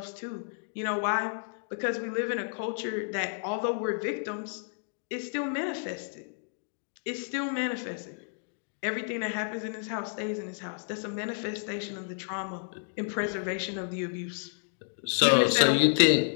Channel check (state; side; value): silent; right; digital silence